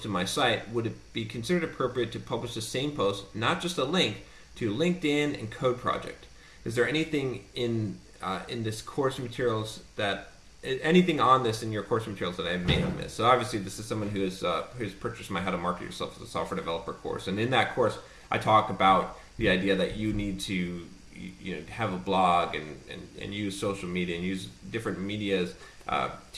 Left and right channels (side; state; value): both; identical; correlation 1.00